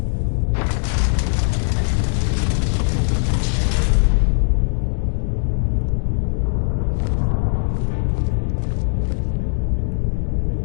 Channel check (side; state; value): right; silent; 66 dB below the other